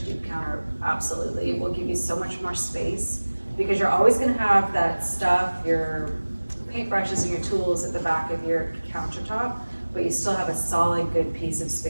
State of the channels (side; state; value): both; inverted; correlation -1.00